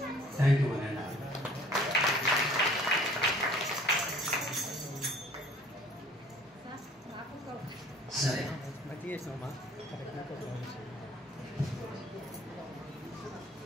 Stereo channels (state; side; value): normal; both; correlation 0.53